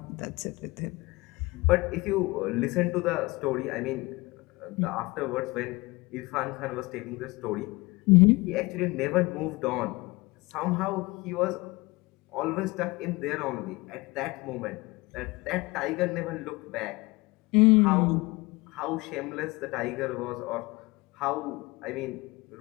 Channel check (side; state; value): right; quieter; 23.2 dB